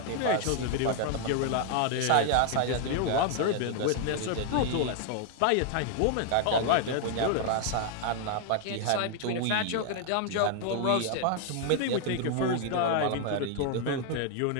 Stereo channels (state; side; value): different; both; correlation 0.00